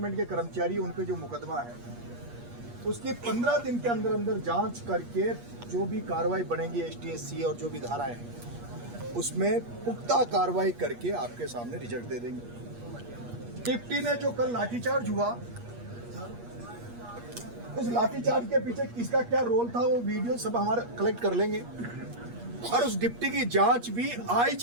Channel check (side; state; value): left; late; 8.4 ms